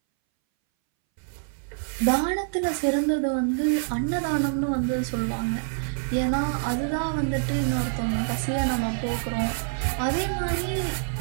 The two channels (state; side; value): silent; left; 61 dB below the other